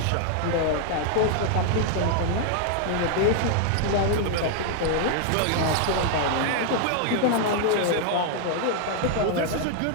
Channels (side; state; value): both; different; correlation 0.00